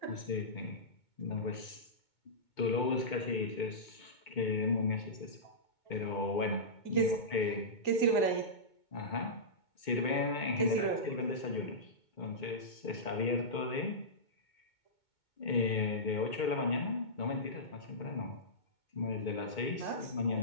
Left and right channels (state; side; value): late; right; 2.2 ms